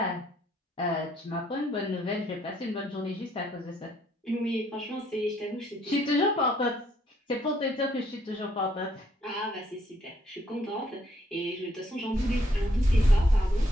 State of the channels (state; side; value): normal; both; correlation 0.69